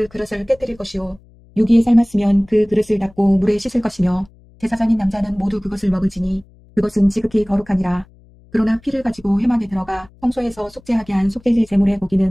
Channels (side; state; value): left; noise; hum, 27 dB below the sound